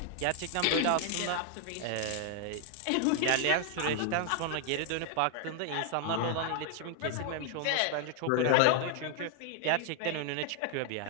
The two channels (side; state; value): both; different; correlation 0.00